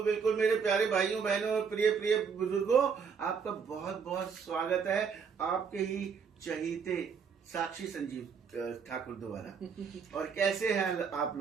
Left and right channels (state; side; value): quieter; left; 6.1 dB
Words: बिल्कुल मेरे प्यारे भाइयों बहनों और प्रिय प्रिय बुजुर्गों, आपका बहुत बहुत स्वागत है आपके ही चहीते साक्षी संजीव ठाकुर द्वारा। और कैसे हैं आप